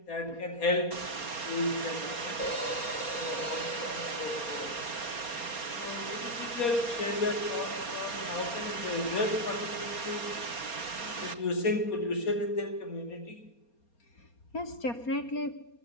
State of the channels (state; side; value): late; right; 4.3 ms